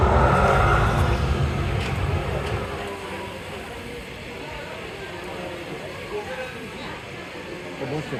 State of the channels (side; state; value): both; identical; correlation 1.00